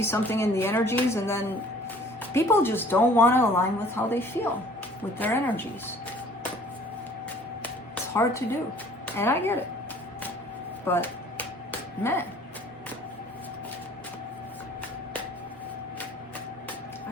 something in the energies and then people just don't want to align with how they feel, with their energies. It's hard to do, and I get it. But, man.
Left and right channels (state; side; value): normal; both; correlation 0.53